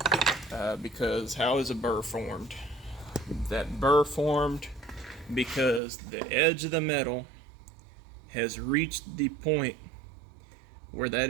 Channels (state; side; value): drops out; left; at 5.8 s